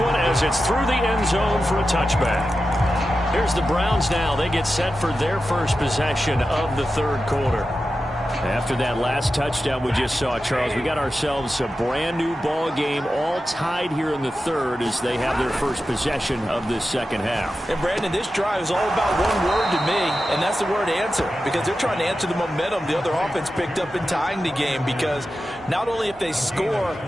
as it's through the end zone for a touchback. Here's the Browns now. They get set for their first possession of the third quarter. After that last touchdown we just saw, Charles, we got ourselves a brand new ball game, all tied here in the third as they have their first possession of this second half. And Brandon, this drive is all about one word to me, and that's the word answer, because they're trying to answer the momentum the other offense picked up in tying the game, because not only if they score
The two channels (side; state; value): both; normal; correlation 0.92